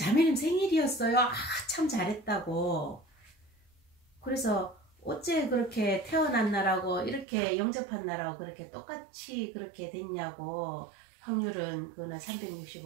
생일이었어요. 아, 참 잘했다고. 그래서 어째 그렇게 태어난 날하고 이렇게 영접한 날하고 그렇게 똑같이 그렇게 됐냐고. 확률은 그날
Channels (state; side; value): drops out; left; at 7.2 s